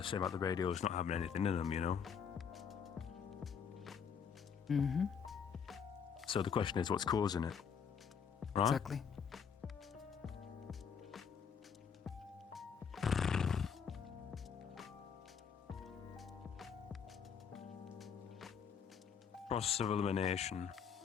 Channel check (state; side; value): quieter; right; 7.0 dB